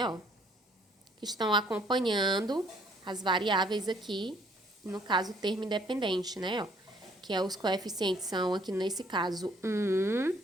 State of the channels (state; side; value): normal; both; correlation 0.62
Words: ó, que estão acompanhando as variáveis aqui, no caso, o termo independente, né, ó, que é os coeficientes são, aqui nesse caso, 1,